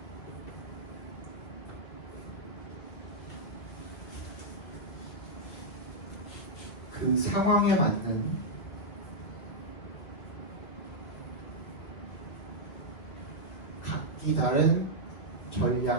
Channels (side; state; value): right; late; 2.2 ms